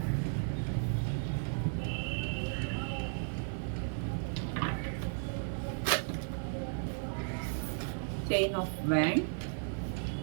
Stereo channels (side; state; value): left; silent; 55 dB below the other